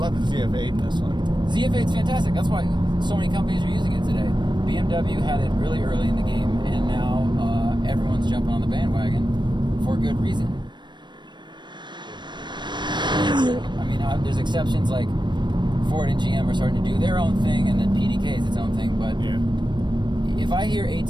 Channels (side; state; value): left; late; 0.22 ms